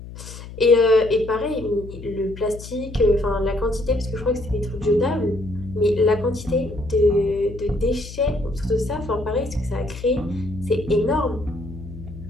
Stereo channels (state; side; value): noise; left; hum, 13 dB below the sound